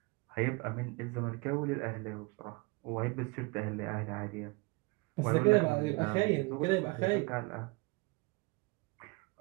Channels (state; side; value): quieter; left; 27.0 dB